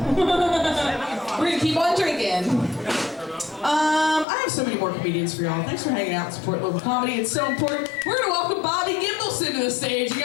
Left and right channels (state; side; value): drops out; right; at 4.2 s